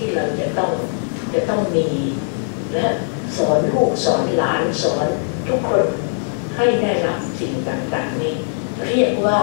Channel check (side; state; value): right; silent; 66 dB below the other